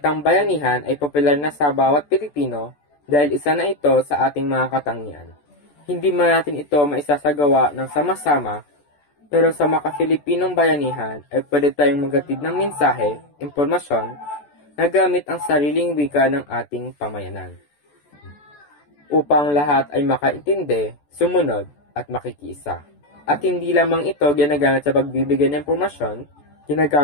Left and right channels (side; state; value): right; late; 14 ms